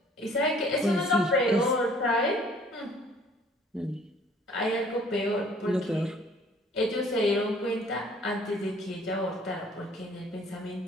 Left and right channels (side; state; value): both; normal; correlation 0.56